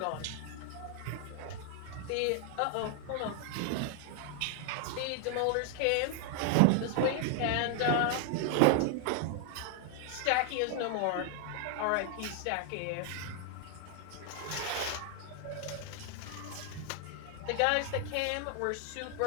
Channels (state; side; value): different; both; correlation 0.00